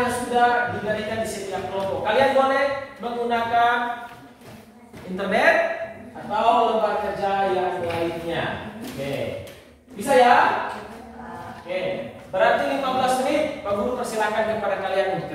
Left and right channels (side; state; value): both; identical; correlation 1.00